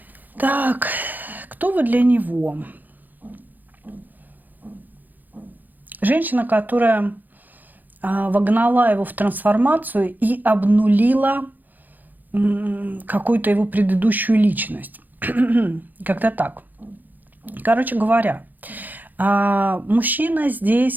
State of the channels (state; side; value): late; left; 0.085 ms